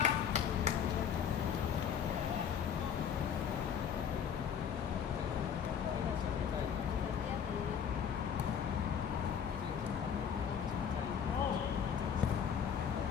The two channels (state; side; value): quieter; right; 7.9 dB